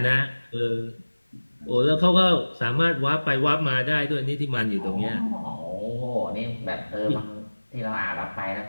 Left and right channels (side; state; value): both; inverted; correlation -1.00